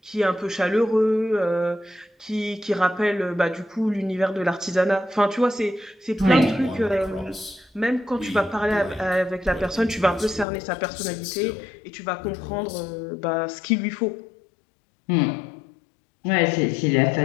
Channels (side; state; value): right; drops out; at 10.5 s